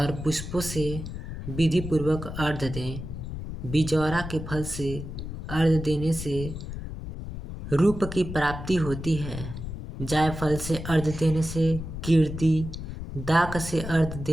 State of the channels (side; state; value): left; noise; rumble, 8 dB below the sound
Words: पुष्पों से विधि पूर्वक अर्घ्य दें। बिजौरा के फल से अर्घ्य देने से रूप की प्राप्ति होती है। जायफल से अर्घ्य देने से कीर्ति, दाक से अर्घ्य